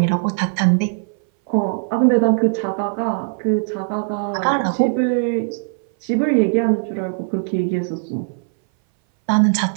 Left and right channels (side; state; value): left; silent; 60 dB below the other